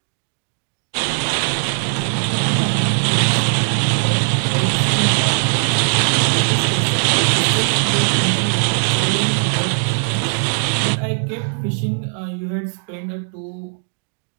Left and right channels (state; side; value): silent; left; digital silence